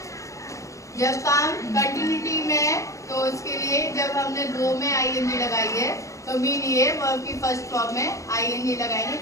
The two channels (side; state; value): right; late; 0.15 ms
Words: जब काम कंटिन्यूटी में है तो उसके लिए जब हमने दो में आईएनजी लगाई है तो मीन ये वर्ब की फर्स्ट फॉर्म में आईएनजी लगाएंगे,